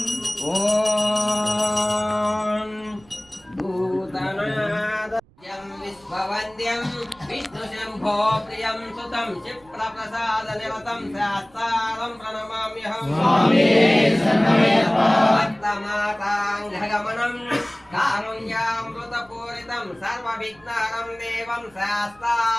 ఓం భూతనాద విశ్వవంద్యం విష్ణు శంభో ప్రియం సుతం క్షిప్రప్రసాద నిరతం శాస్త్రం ప్రణమామ్యహం భక్తమాతాంఘగమనం కారుణ్యామృతపూరితం సర్వవిఘ్నహరం దేవం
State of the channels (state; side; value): noise; right; rumble, 29 dB below the sound